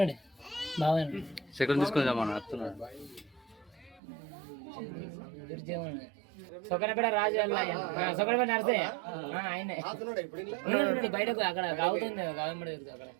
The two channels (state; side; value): drops out; left; at 4.0 s